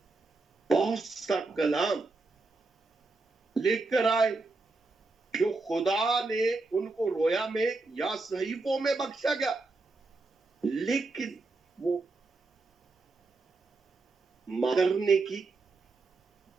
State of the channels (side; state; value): left; quieter; 3.5 dB